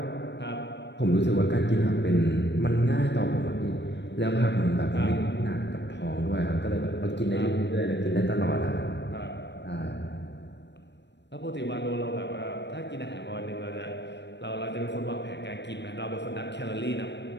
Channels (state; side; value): late; right; 0.51 ms